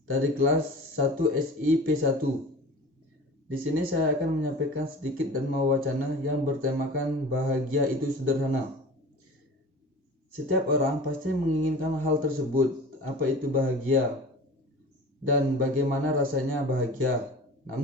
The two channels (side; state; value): both; normal; correlation 0.38